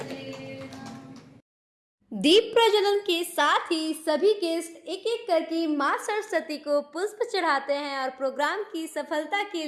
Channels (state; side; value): identical; both; correlation 1.00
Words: दीप प्रज्वलन के साथ ही सभी गेस्ट एक एक करके मां सरस्वती को पुष्प चढ़ाते हैं और प्रोग्राम की सफलता के